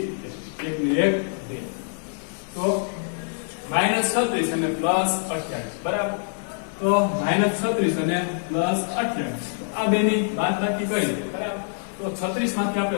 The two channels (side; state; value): right; silent; digital silence